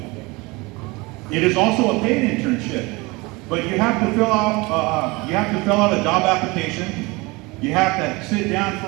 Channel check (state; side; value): quieter; left; 24.5 dB